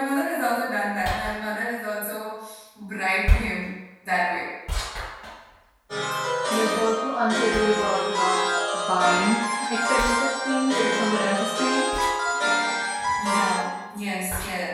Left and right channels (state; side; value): identical; both; correlation 1.00